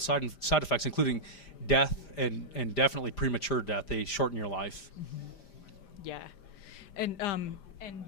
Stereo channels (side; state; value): right; late; 5.0 ms